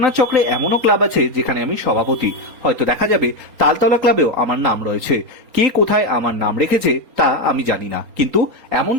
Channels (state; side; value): late; left; 4.3 ms